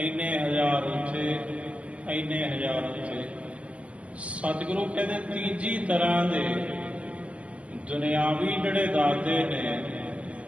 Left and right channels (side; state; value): left; late; 0.065 ms